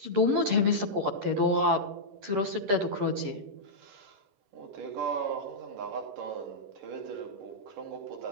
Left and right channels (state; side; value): late; left; 11 ms